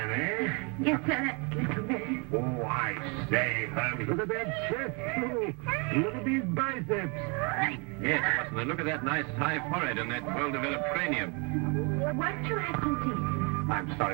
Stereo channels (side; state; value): left; quieter; 32.5 dB